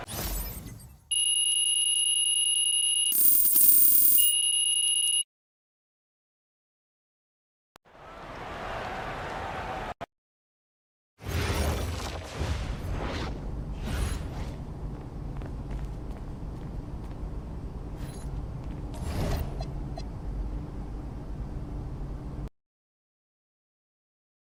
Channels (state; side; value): identical; both; correlation 1.00